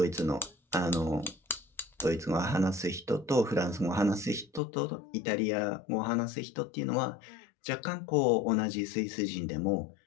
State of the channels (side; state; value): right; drops out; at 4.6 s